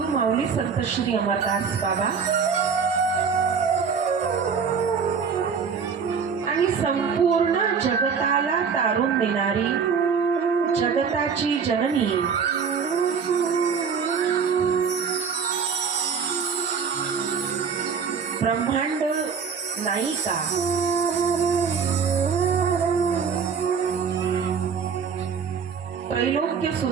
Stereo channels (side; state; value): left; quieter; 6.1 dB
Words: माऊली संत श्री अमरदास बाबा आणि संपूर्ण जगताला तारून देणारी जगताची जननी ब्रह्मांड नायिका त्रैलोक्य